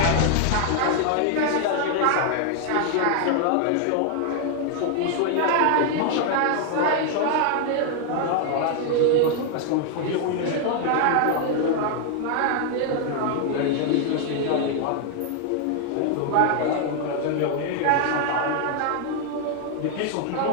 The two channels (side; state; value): both; different; correlation 0.00